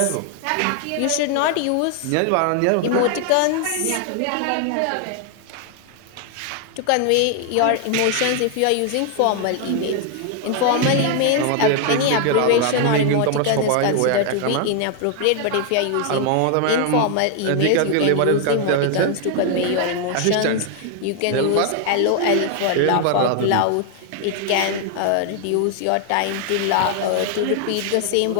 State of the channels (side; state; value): both; different; correlation 0.00